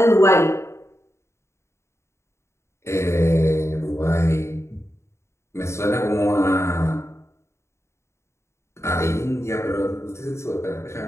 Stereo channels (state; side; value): late; right; 0.13 ms